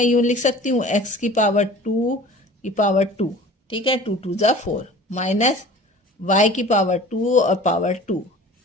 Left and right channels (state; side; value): normal; both; correlation 0.43